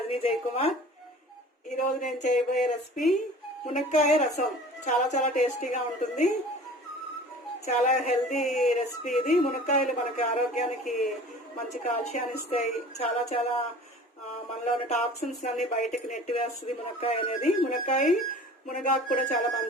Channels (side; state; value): both; normal; correlation 0.43